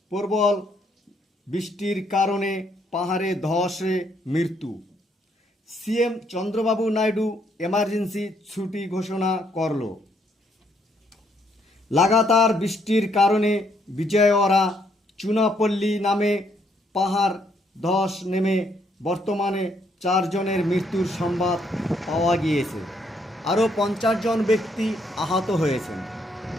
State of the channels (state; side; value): normal; both; correlation 0.71